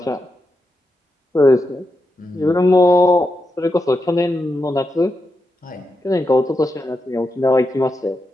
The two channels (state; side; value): normal; both; correlation 0.86